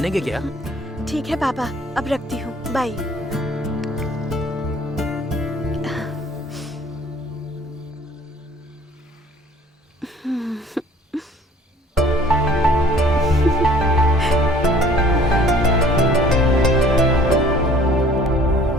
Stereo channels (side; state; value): both; normal; correlation 0.54